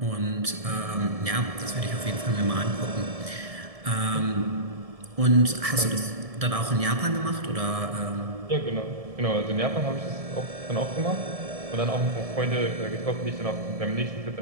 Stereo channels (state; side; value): late; left; 1.7 ms